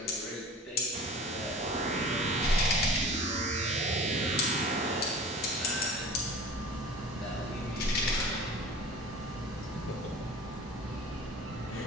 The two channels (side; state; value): both; normal; correlation 0.41